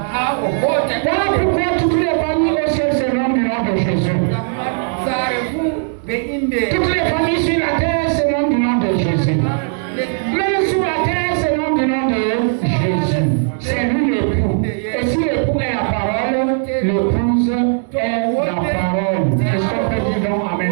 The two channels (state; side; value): silent; left; 61 dB below the other